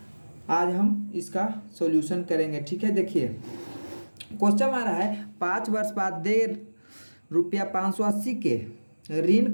आज हम इसका सॉल्यूशन करेंगे। ठीक है, देखिए क्वेश्चन आ रहा है 5 वर्ष बाद दे रुपया 580 के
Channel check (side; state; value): both; inverted; correlation -1.00